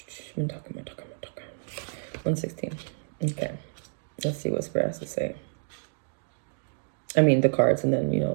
116. Okay. Let's see what Spirit has to say. I mean the cards, and then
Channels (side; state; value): left; silent; digital silence